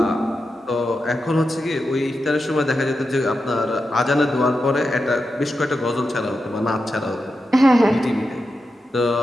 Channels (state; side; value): normal; both; correlation 0.89